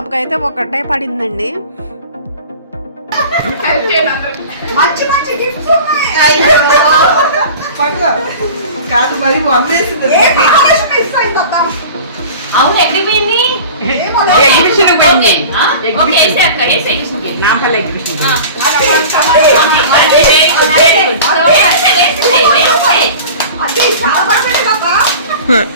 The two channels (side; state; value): both; inverted; correlation -0.38